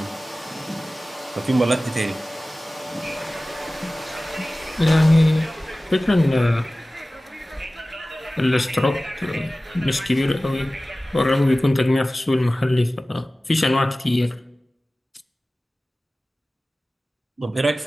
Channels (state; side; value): normal; both; correlation 0.97